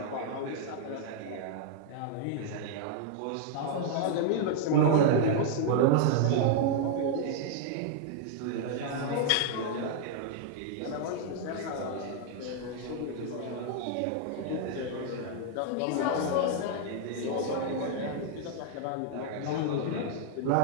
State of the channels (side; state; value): both; different; correlation 0.00